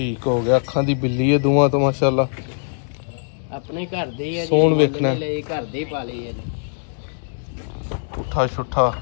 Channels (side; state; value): right; silent; digital silence